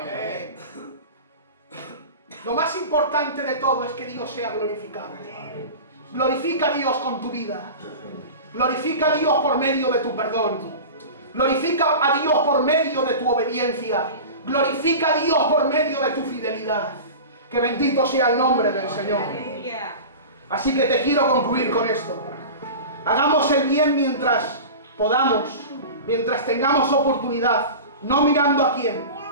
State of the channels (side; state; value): both; inverted; correlation -0.32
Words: Lo más importante de todo es que Dios sea glorificado. Glorifica a Dios con tu vida. Glorifica a Dios por medio de tu perdón. Glorifica a Dios por medio de tu obediencia. Glorifica a Dios por medio de tu fidelidad. Que bendito sea el nombre del Señor. Así que te quiero concluir con esto. Hagamos el bien mientras podamos. mientras tengamos oportunidad, no mirando a quién,